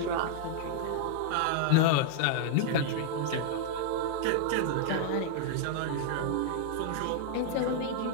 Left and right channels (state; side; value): different; both; correlation 0.00